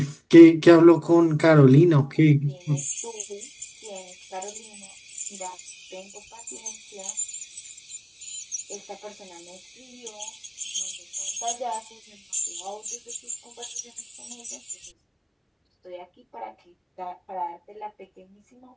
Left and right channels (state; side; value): identical; both; correlation 1.00